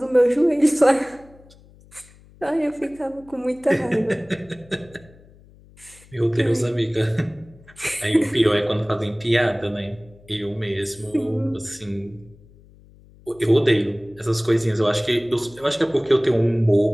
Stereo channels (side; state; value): left; noise; hum, 25 dB below the sound